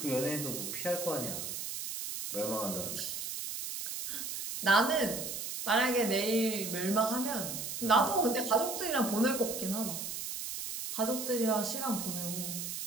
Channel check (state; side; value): noise; right; hiss, 5 dB below the sound